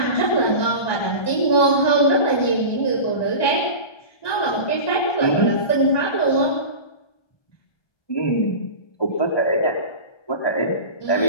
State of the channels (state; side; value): late; right; 1.2 ms